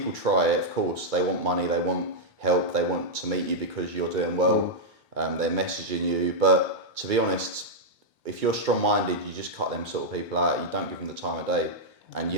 try it, of course. They want money, they want help, they want to meet you because you're doing well. They're messaging you, but to be honest, if you're strong-minded, you just cut them sort of people out. You don't give them the time of day, and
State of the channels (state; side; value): normal; both; correlation -0.05